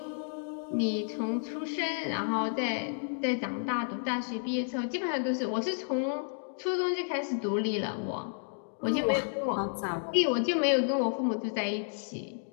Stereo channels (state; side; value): silent; right; digital silence